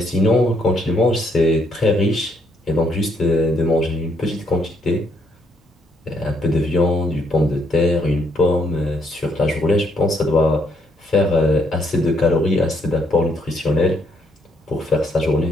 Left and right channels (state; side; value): normal; both; correlation 0.72